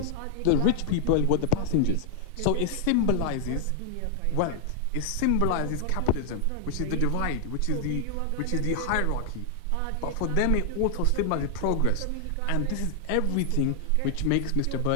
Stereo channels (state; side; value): different; both; correlation 0.00